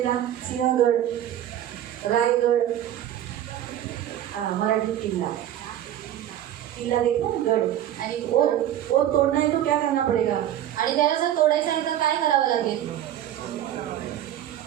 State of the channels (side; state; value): left; quieter; 11.7 dB